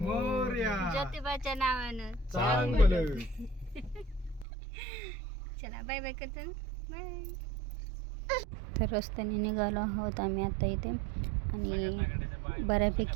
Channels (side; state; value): left; drops out; at 4.5 s